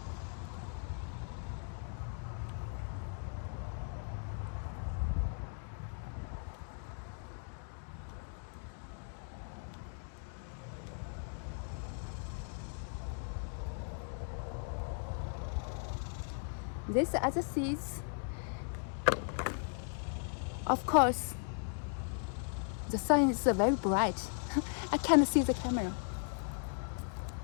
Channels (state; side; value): silent; right; 53 dB below the other